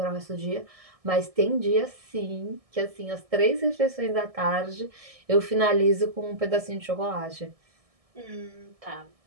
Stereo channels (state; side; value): late; left; 1.6 ms